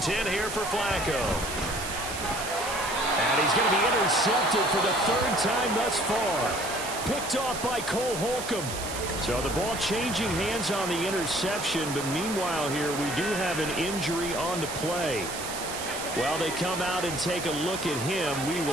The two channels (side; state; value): right; noise; hiss, 8 dB below the sound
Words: here for Flacco. And he's going to be intercepted for the 3rd time thus far. Picked off by Cole Holcomb. So the ball changing hands on the interception, but meanwhile here we do have an injury on the play. While they come out and take a look at him, we